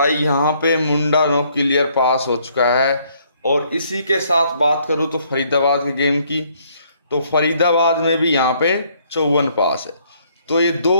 यहाँ पे मुंडा नो क्लियर पास हो चुका है। और इसी के साथ बात करूँ तो फरीदाबाद के गेम की, तो फरीदाबाद में भी यहाँ पे 54 पास है। तो ये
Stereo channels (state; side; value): inverted; both; correlation -0.66